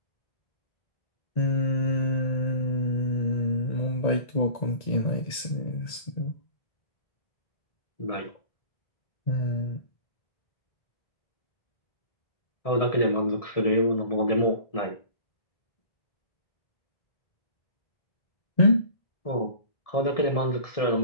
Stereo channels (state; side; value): late; right; 1.6 ms